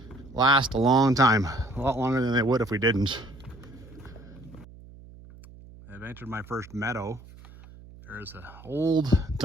last a long time, a lot longer than they would if we didn't. I've entered my first meadow. There's an old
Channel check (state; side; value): noise; right; hum, 20 dB below the sound